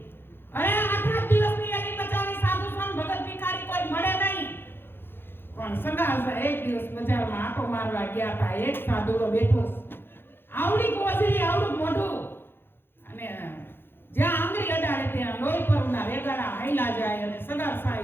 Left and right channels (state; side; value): late; right; 0.10 ms